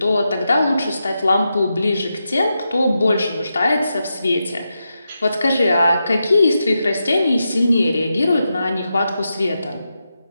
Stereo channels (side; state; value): both; inverted; correlation -0.87